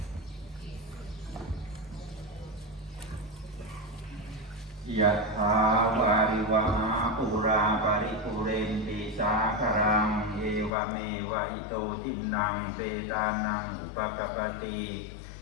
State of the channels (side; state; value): right; drops out; at 10.7 s